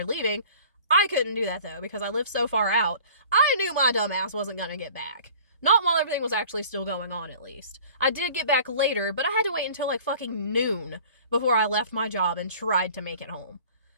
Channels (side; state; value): both; inverted; correlation -0.47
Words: leaving. I couldn't do that, though, because I live so far out. I knew my dumb ass wasn't going to get back. Not while everything was actually still going on, at least. I did get back later, but I had to wait until, like, fucking noon before I left my job and tried to make it home.